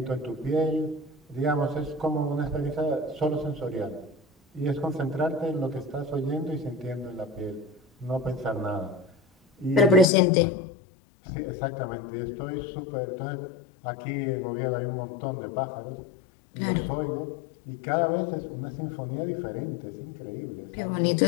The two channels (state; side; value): drops out; right; at 10.1 s